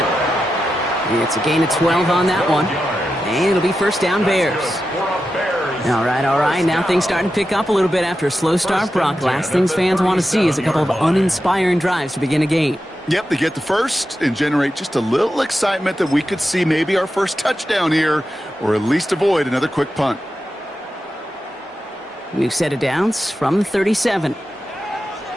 It's a gain of 12 on that one. And it'll be first down, Bears. All right. Now things starting to pick up a little bit after a slow start, Brock. Last things fans want to see is a couple of uninspiring drives to begin a game. Yep, they get the first and generate just a little excitement that we could see maybe our first touchdown here, or at least avoid another quick punt. New set of downs from the 37.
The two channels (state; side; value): normal; both; correlation 0.90